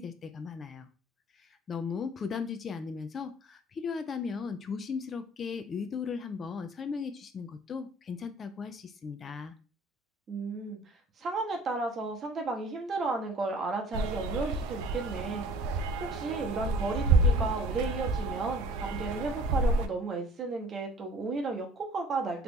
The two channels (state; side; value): normal; both; correlation 0.50